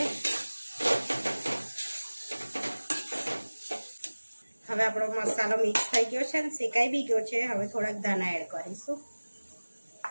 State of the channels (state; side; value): inverted; both; correlation -1.00